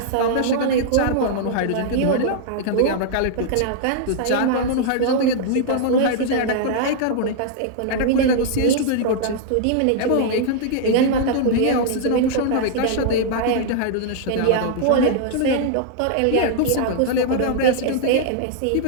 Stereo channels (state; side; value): different; both; correlation -0.01